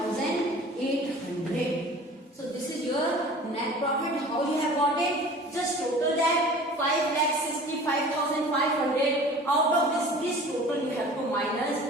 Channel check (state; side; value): normal; both; correlation 0.43